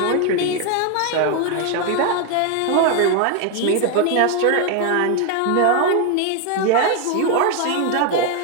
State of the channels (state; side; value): different; both; correlation 0.01